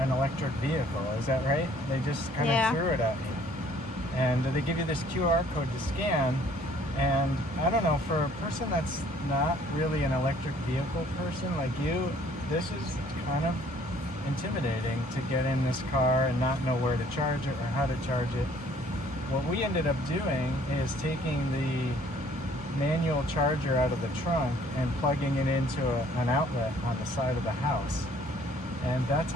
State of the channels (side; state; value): both; normal; correlation 0.59